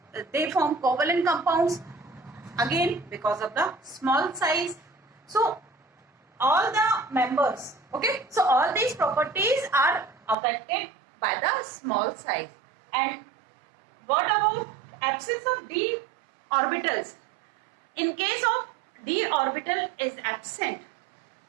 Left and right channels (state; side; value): drops out; left; at 10.4 s